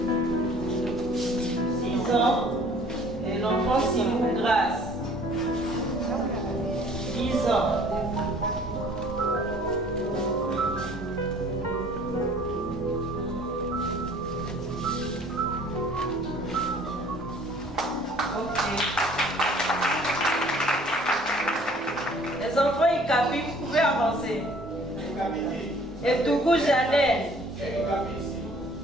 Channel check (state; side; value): normal; both; correlation 0.54